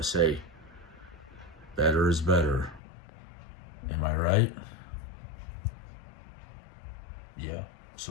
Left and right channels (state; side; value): drops out; right; at 2.8 s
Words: say, better is better. Am I right? Yeah.